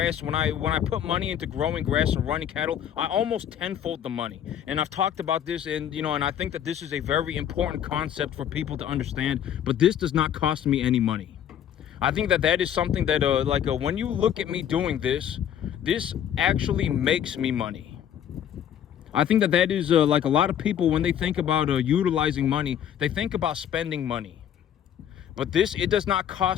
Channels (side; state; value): right; quieter; 9.8 dB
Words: When I put money into growing grass and running cattle, I almost tenfold the money. And I've talked about this, and and I think that this is a very important concept for people to understand. But this does not cost me any money. I think that is something that when you look at me doing this actually makes me money. I think that is like a lot of people, when they think about utilizing money, they think about spending money. But it does not